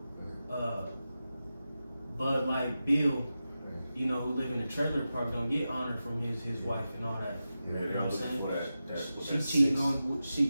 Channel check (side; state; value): both; inverted; correlation -0.92